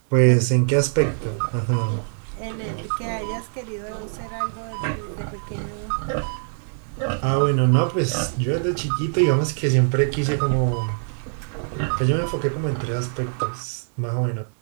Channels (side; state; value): left; silent; digital silence